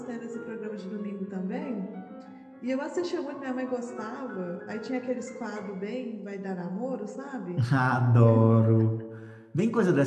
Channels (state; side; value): identical; both; correlation 1.00